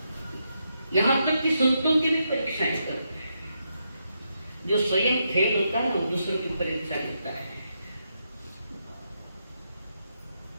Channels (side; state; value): both; inverted; correlation -0.82